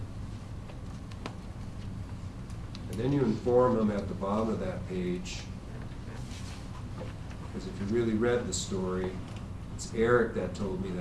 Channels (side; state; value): both; identical; correlation 1.00